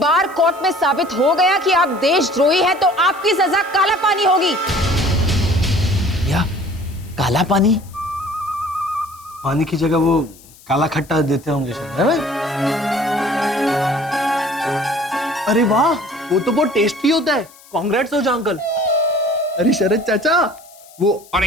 कोर्ट में साबित हो गया कि आप देशद्रोही हैं तो आपकी सजा काला पानी होगी। या काला पानी? पानी की जगह वो काला खट्टा देते होंगे शायद, है भाई? अरे वाह, वो तो बहुत टेस्टी होता है। कांग्रेट्स ओझा अंकल। अरे शरद चाचा, वो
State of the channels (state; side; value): noise; left; hiss, 24 dB below the sound